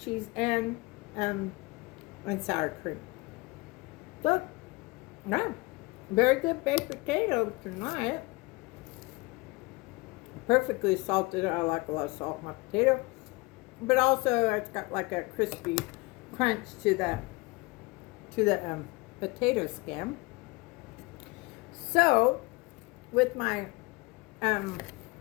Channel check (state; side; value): quieter; right; 25.3 dB